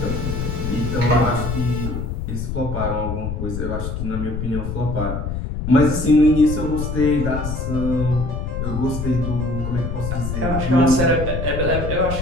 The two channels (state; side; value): noise; left; rumble, 4 dB below the sound